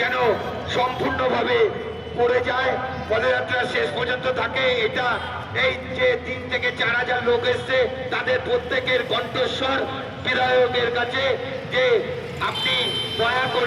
সম্পূর্ণভাবে করে যায়, পদযাত্রা শেষ পর্যন্ত থাকে। এটা এই যে 3 থেকে 4,000 লোক এসছে, তাদের প্রত্যেকের কণ্ঠস্বর বিধায়কের কাছে যে আপনি দয়া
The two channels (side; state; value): both; identical; correlation 1.00